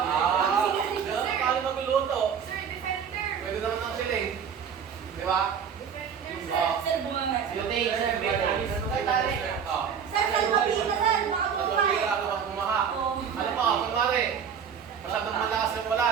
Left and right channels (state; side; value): quieter; left; 7.3 dB